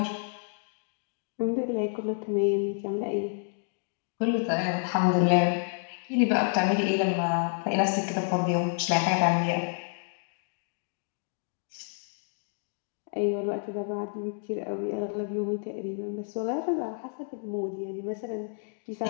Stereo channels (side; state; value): right; silent; digital silence